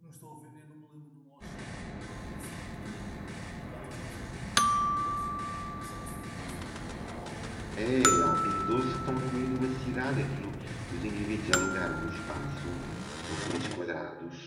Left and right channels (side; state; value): both; identical; correlation 1.00